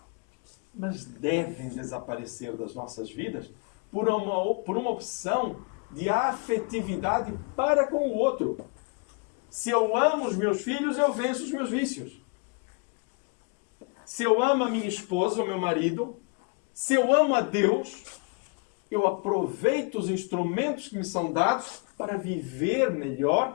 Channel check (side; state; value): right; quieter; 34.4 dB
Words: mas devem desaparecer das nossas vidas por uma opção de afetividade para com o outro. Se eu amo os meus filhos, eu venço os meus vícios. Se eu amo a minha esposa ou meu marido, se eu amo a Deus, eu aproveito os instrumentos que me são dados para viver